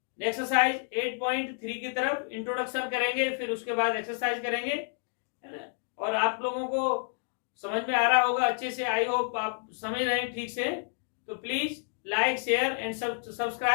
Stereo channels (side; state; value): right; silent; digital silence